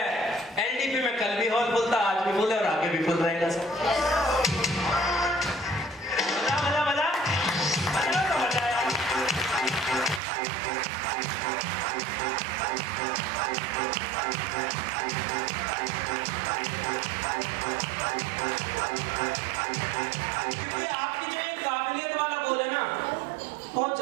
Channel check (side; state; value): left; drops out; at 10.2 s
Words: एलडीपी में कल भी हॉल फुल था, आज भी फुल है और आगे भी फुल रहेगा सर। मजा मजा मजा मजा तो मजा आया। क्योंकि आपकी जो ये काबिलियत वाला गोल है ना, बहुत